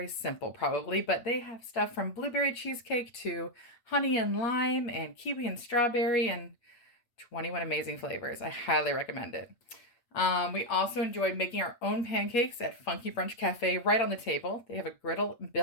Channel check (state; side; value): late; right; 8.8 ms